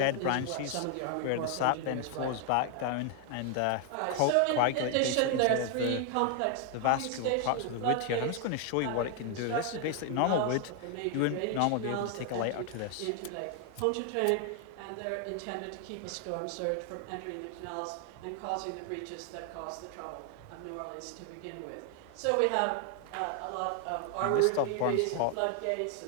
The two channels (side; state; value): both; different; correlation 0.01